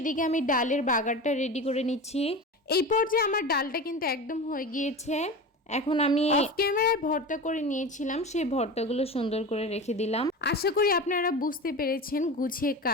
আমি ডালের বাগারটা রেডি করে নিচ্ছি। এই পর্যায়ে আমার ডালটা কিন্তু একদম হয়ে গিয়েছে। এখন আমি অফ ক্যামেরায় ভর্তা করে নিয়েছিলাম, সেই ভর্তাগুলো সুন্দর করে রেখে দিলাম। আশা করি আপনারা বুঝতে পেরেছেন গুছিয়ে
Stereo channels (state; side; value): normal; both; correlation 0.28